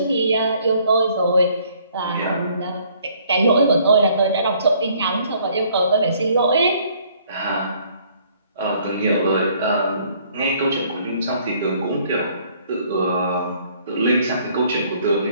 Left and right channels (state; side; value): inverted; both; correlation -0.62